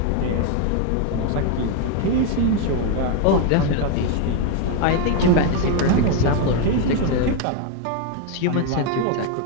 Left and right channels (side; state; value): both; different; correlation 0.01